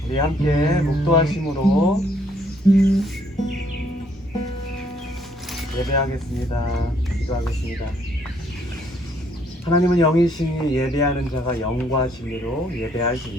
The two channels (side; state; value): both; normal; correlation 0.67